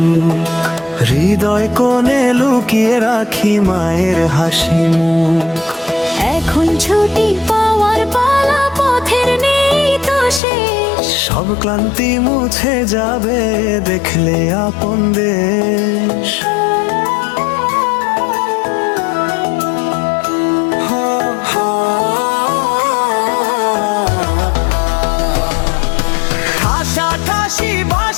হৃদয় কোণে লুকিয়ে রাখি মায়ের হাসি মুখ। এখন ছুটি পাওয়ার পালা, পথের নেই তো শেষ। সব ক্লান্তি মুছে যাবে দেখলে আপন দেশ। ঠাসাঠাসি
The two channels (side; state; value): right; drops out; at 10.4 s